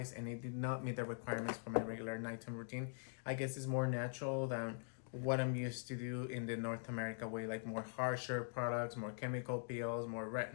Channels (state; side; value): silent; right; digital silence